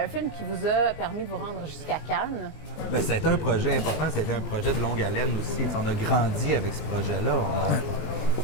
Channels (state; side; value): late; right; 19 ms